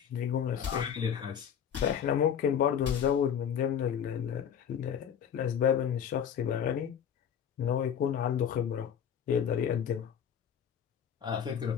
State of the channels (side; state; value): right; quieter; 8.4 dB